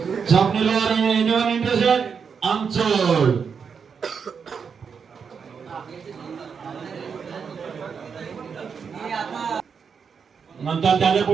स्वप्नील लोहार एनिवन इंटरेस्टेड? अनसोड. नंतर त्याच्या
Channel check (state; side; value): quieter; left; 6.3 dB